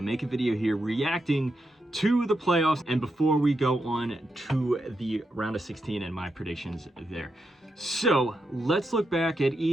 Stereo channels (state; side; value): normal; both; correlation 0.84